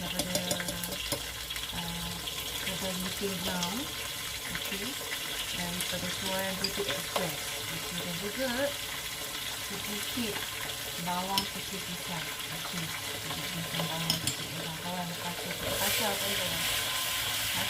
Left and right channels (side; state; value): both; identical; correlation 1.00